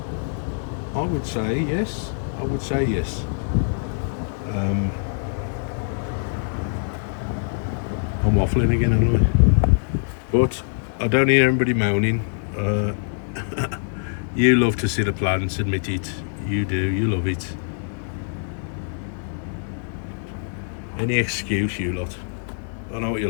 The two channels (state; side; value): silent; right; digital silence